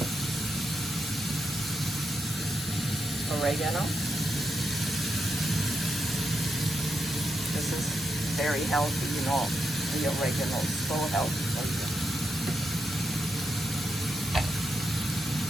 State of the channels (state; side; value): normal; both; correlation 0.84